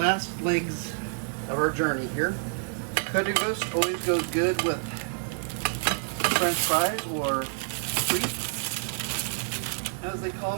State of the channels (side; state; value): left; silent; 59 dB below the other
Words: legs of our journey here. Currywurst always goes good with French fries, or frites, as they call